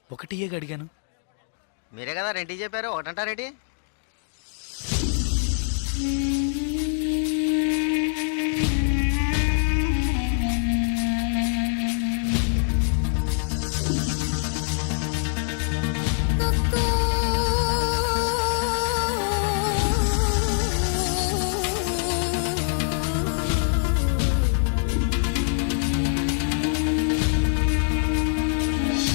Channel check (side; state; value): right; silent; digital silence